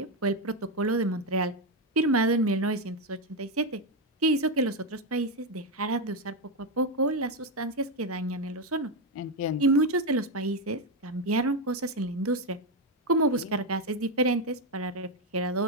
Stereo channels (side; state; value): both; normal; correlation 0.07